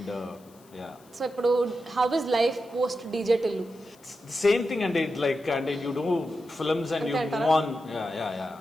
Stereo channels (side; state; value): left; noise; hiss, 28 dB below the sound